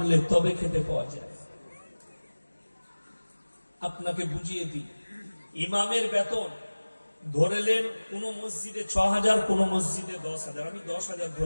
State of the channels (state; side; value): inverted; both; correlation -1.00